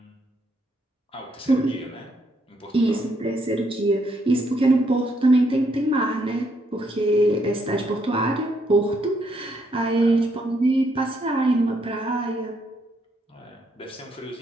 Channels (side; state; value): both; normal; correlation 0.74